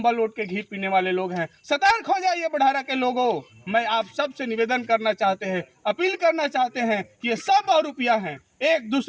ओढ़ के घी पीने वाले लोग हैं। सतर्क हो जाइए बड़हरा के लोगों। मैं आप सब से निवेदन करना चाहते हैं, अपील करना चाहते हैं कि ये सब बहुरूपिया हैं, एक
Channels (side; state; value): both; identical; correlation 1.00